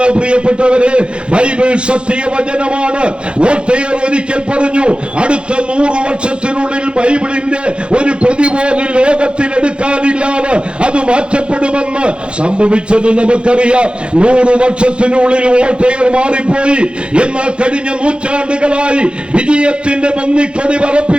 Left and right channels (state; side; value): late; left; 0.056 ms